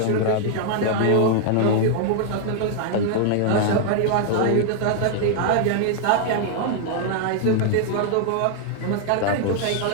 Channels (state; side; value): different; both; correlation 0.00